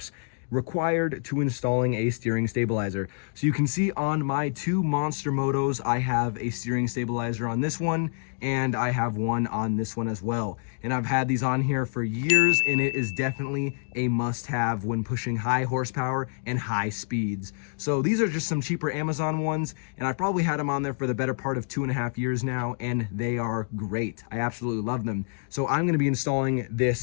required to installing a steering stabilizer. So you can see on my two monster motos, I have a steering stabilizer on this one, and I have one on this one as well. And I've had these on here for years, and it is definitely a must-have when pushing high horsepower and high speeds. So these are just some cheaper Amazon ones, and I've probably had them on there for the better part of 2.5 years now, and they are great. I absolutely love them. So I'm gonna be installing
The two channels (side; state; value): right; silent; 60 dB below the other